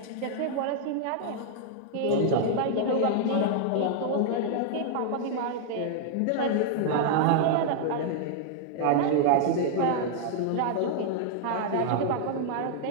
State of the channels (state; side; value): different; both; correlation -0.01